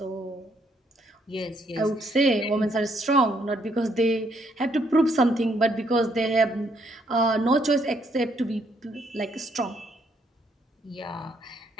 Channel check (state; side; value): normal; both; correlation 0.71